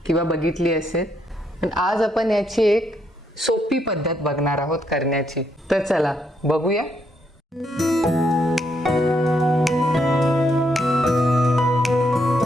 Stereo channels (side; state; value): both; normal; correlation 0.76